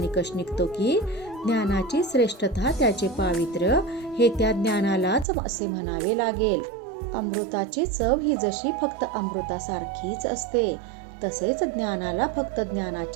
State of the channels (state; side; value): drops out; left; at 5.2 s